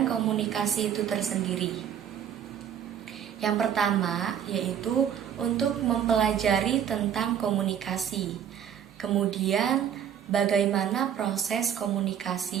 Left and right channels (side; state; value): left; quieter; 9.1 dB